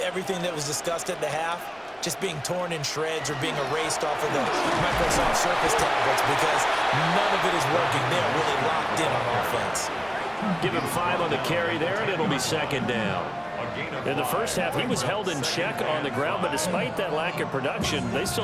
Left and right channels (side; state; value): both; identical; correlation 1.00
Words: that was discussed at the half just being torn in shreds or being erased off of the Microsoft Surface tablets because none of it is working. They're really locked in on offense. Give him 5 on the carry there, and it'll be 2nd down. In the first half, he was held in check on the ground, but despite that lack of production, they